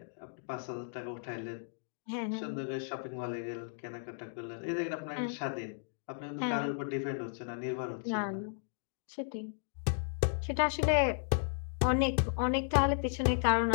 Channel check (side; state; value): right; silent; digital silence